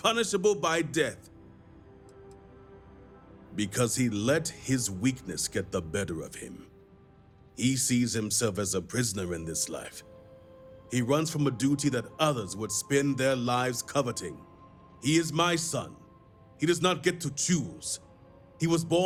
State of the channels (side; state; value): both; identical; correlation 1.00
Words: by death. Because he let his weakness get the better of him. He sees himself as a prisoner in this life. He runs from a duty that others would spend their lives coveting. He is my son. He does not get to choose. He was